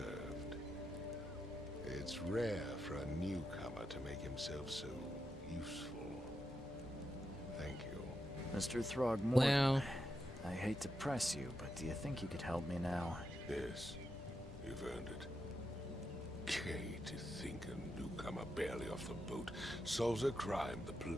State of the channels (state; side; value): normal; both; correlation 0.85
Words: It's rare for a newcomer to make himself so useful. Thank you. Mr. Throgmorton, Well, I hate to press you, but do you think you could help me now? Yes, you've earned it. Gay to think a newcomer barely off the boat solves a crime the